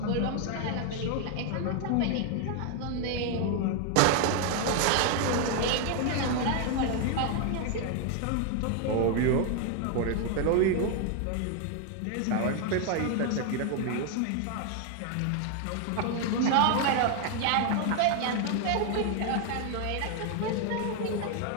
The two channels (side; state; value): both; different; correlation 0.01